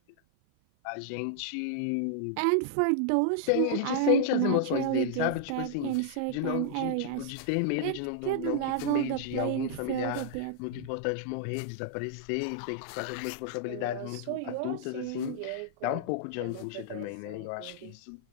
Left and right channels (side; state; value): both; different; correlation -0.01